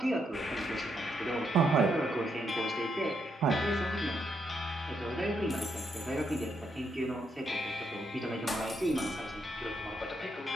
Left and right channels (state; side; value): normal; both; correlation 0.78